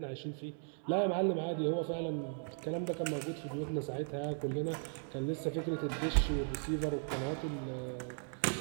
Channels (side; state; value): left; silent; 53 dB below the other